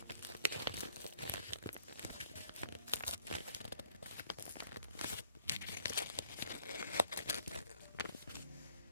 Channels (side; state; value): both; inverted; correlation -0.61